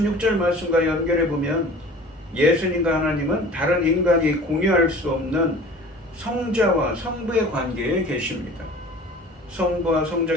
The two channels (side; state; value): both; normal; correlation 0.43